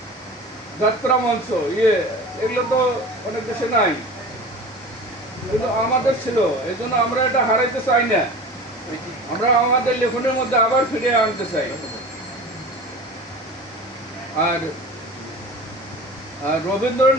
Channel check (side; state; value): both; normal; correlation 0.36